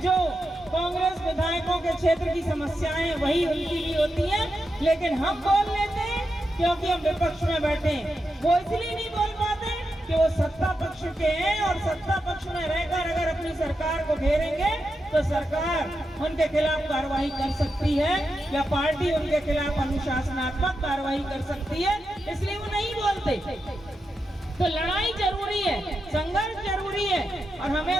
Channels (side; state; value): both; normal; correlation 0.87